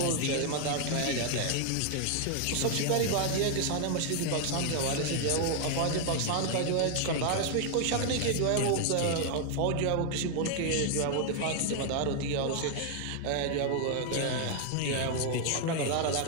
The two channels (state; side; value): different; both; correlation 0.00